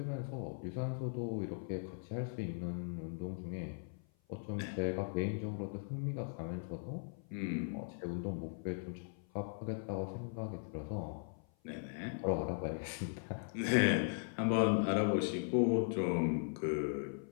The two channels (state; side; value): silent; right; 52 dB below the other